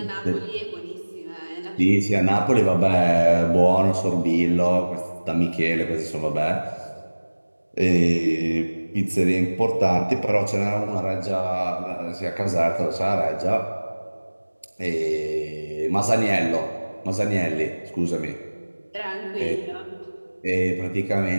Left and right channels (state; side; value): inverted; both; correlation -1.00